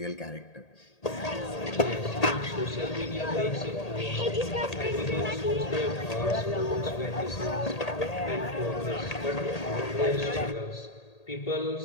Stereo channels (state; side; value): late; right; 1.8 ms